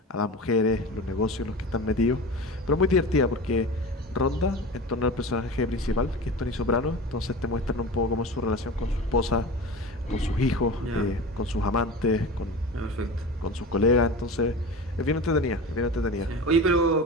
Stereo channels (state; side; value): normal; both; correlation 0.30